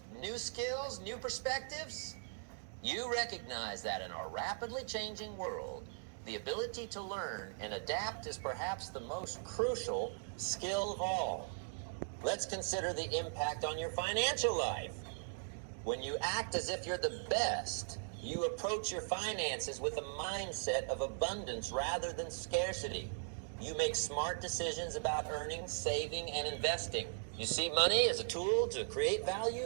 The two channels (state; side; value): silent; left; digital silence